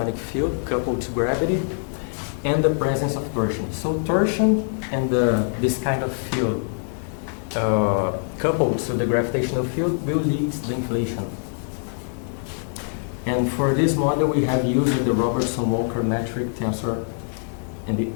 field coupled to gravity and the presence of torsion. So torsion and this kind of field coupled to the gravitational field will lead to the inflation. And for this model, we have used the Robertson-Walker metric tensor, and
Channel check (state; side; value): silent; right; digital silence